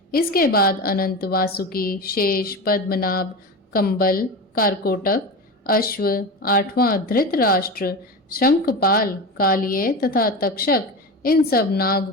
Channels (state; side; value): normal; both; correlation 0.25